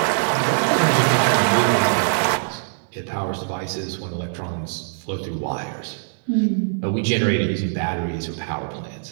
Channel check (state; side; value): silent; left; 64 dB below the other